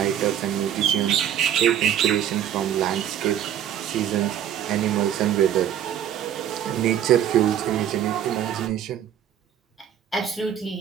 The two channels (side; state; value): left; quieter; 10.1 dB